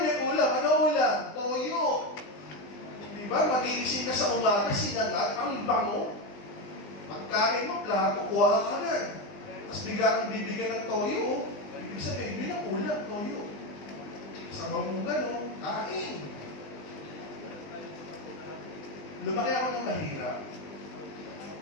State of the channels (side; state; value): right; late; 20 ms